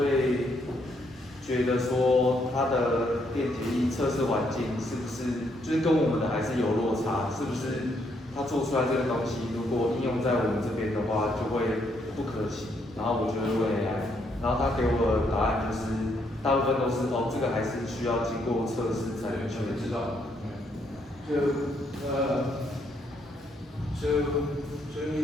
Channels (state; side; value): normal; both; correlation 0.73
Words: 觉得说它的电解液测试环境是不是，就是跟我们的还是有落差，是不是？它做出来这个东西，如果应用在我们这边的话，就会不可行。然后我就会问 AI，然后他给我的答案就是，大部分都是这个还是需要经过测试才能确知道。So